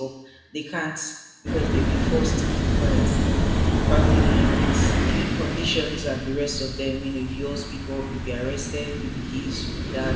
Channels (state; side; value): identical; both; correlation 1.00